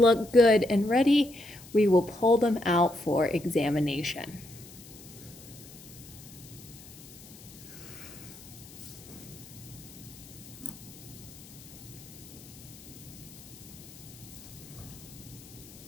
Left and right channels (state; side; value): noise; left; hiss, 19 dB below the sound